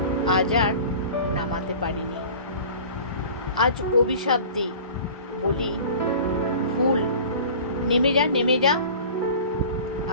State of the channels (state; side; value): inverted; both; correlation -0.41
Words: আজ আর নামাতে পারিনি। আজ অভিশাপ দিই, বলি ভুল, নেমে যা নেমে যা।